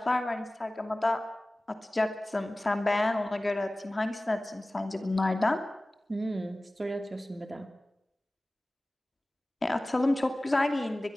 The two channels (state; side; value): normal; both; correlation 0.98